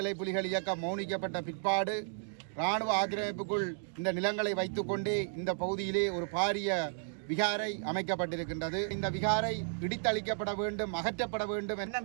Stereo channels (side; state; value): left; silent; digital silence